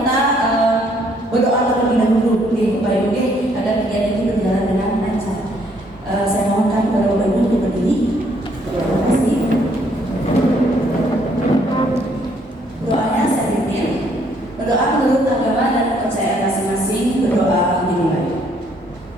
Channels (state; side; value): normal; both; correlation 0.67